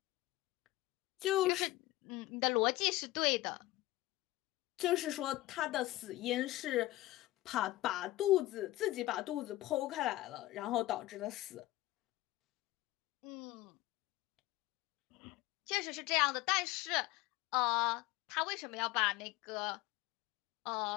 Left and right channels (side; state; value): right; quieter; 17.6 dB